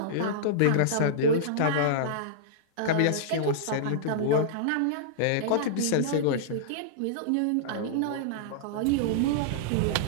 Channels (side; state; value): both; different; correlation -0.02